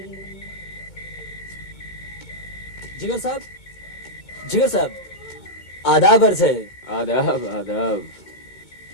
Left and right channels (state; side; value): late; right; 2.2 ms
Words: जिगर साहब, जिगर साहब, आदाब अर्ज है। आदाब आदाब।